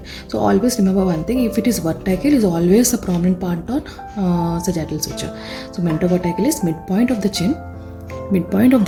So always remember one thing, if it is vertical, is always the prominent part on sagittal suture. So mentovertical is midpoint of the chin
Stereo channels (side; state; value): both; identical; correlation 1.00